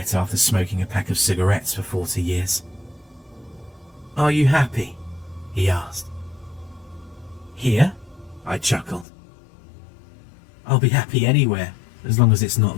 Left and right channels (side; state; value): right; drops out; at 9.1 s